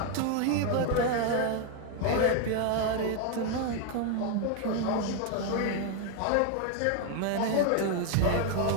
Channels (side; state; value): both; different; correlation 0.01